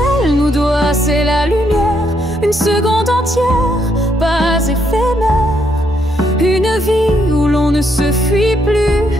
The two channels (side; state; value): both; normal; correlation 0.75